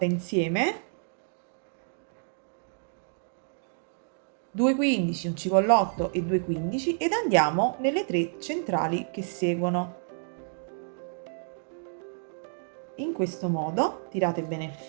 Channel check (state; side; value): silent; left; digital silence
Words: insieme: 2 15, un cipollotto e 2 15, ed andiamo nelle 3 centrali che seguono. In questo modo tirate bene il